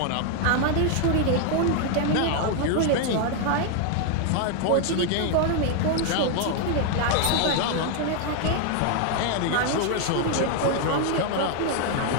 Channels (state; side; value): different; both; correlation 0.00